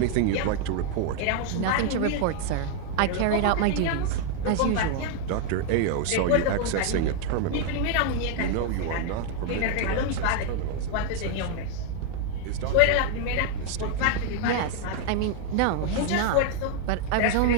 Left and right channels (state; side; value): different; both; correlation 0.00